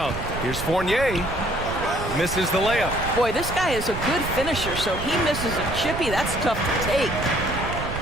Here's Fournier. Misses the layup. Boy, this guy is a good finisher, so he misses a chippy. That's tough to take.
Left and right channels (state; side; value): noise; right; rumble, 7 dB below the sound